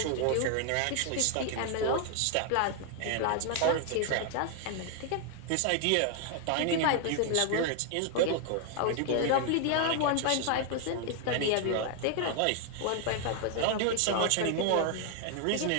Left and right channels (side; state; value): both; different; correlation 0.00